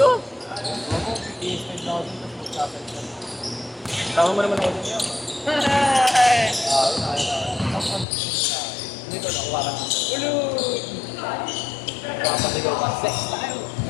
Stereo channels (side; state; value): right; drops out; at 8.1 s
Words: Ako, PS5 na ako dito. Tama mo naman ako dun yan. Dito, nakuha ka. Ulul! Papasigaw ka. Sex tayo!